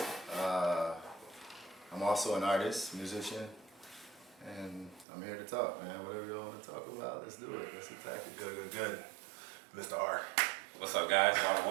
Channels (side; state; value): left; drops out; at 5.1 s